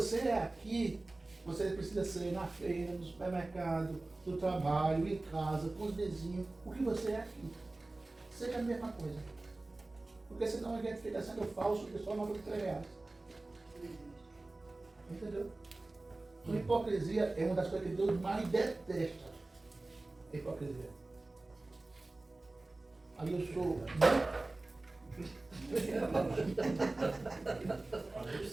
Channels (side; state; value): left; quieter; 3.0 dB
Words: é aqui, você precisa ser na feira, no supermercado, no trabalho, em casa, com os vizinhos. O que você é aqui. Seja a mesma coisa. Porque senão a gente fica sendo falso, que só não fica reais. Entendeu? A hipocrisia é uma das coisas que Deus mais detesta. A hipocrisia. Aí eu